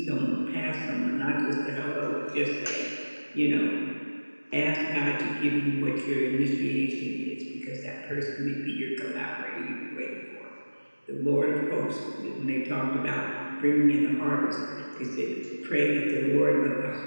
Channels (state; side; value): inverted; both; correlation -1.00